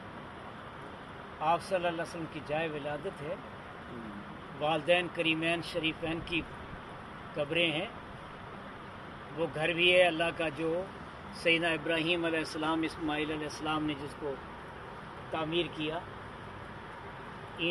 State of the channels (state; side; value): identical; both; correlation 1.00